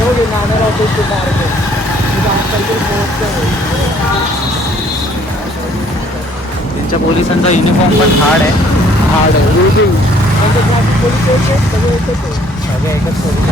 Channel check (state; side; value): normal; both; correlation 0.61